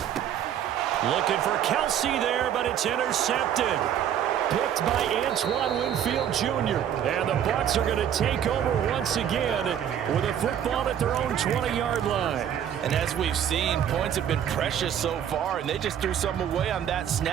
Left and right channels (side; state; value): left; quieter; 9.6 dB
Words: Looking for Kelsey there, but it's intercepted. Picked by Antoine Winfield Jr. And the Bucks are going to take over once again with a football at their own 20-yard line. And as we've seen, points have been precious so far, and they just threw some away on that